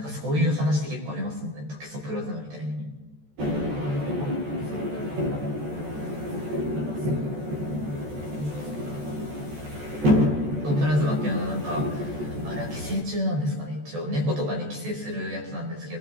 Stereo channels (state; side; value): late; left; 14 ms